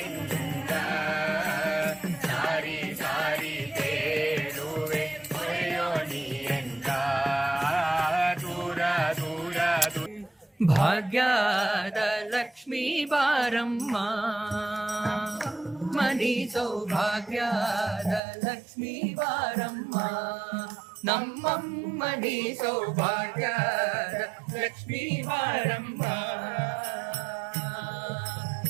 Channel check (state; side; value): drops out; left; at 18.2 s